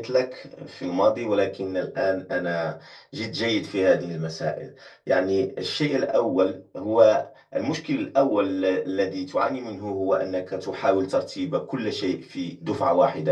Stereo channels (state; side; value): identical; both; correlation 1.00